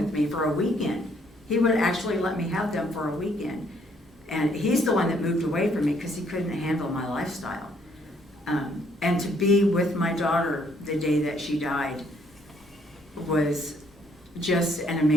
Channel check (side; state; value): both; normal; correlation 0.67